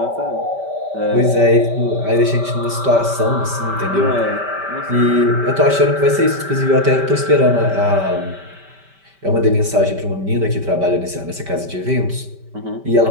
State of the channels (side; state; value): left; late; 5.1 ms